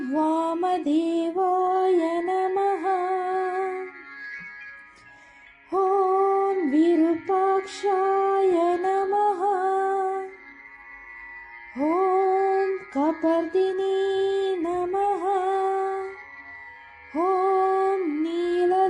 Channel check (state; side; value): identical; both; correlation 1.00